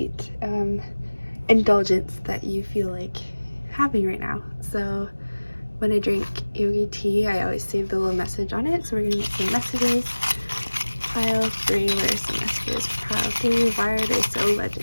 indulgence that you feel like having right now. So when I drink yogi tea, I always save the little message on it. So we're gonna get some messages. Pile 3, where are some messages for pile 3? Why are they so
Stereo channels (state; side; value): inverted; both; correlation -1.00